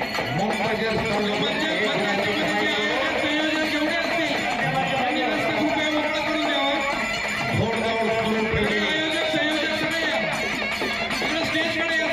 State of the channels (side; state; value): both; identical; correlation 1.00